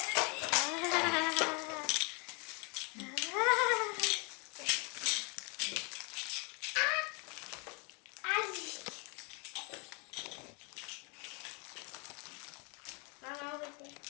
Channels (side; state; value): right; quieter; 33.4 dB